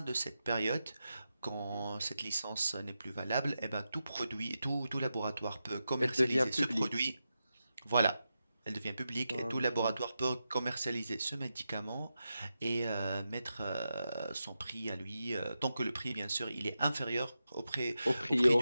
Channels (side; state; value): both; inverted; correlation -0.90